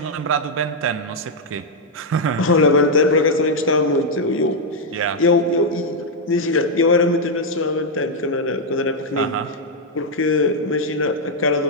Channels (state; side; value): normal; both; correlation -0.02